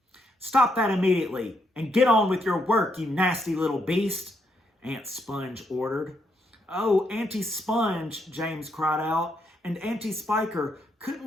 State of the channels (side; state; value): both; normal; correlation 0.77